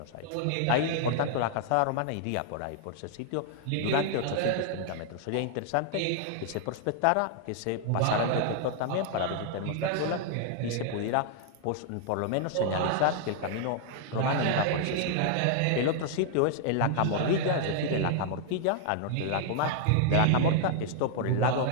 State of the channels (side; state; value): both; different; correlation -0.01